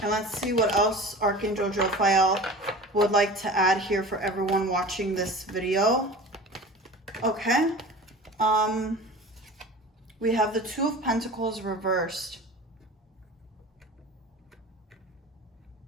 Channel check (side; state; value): both; normal; correlation 0.37